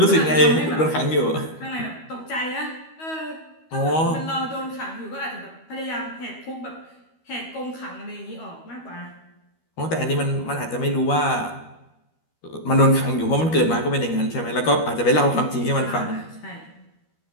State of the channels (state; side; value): late; right; 13 ms